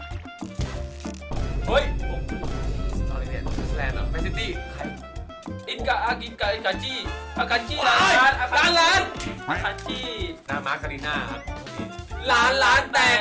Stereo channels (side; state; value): both; identical; correlation 1.00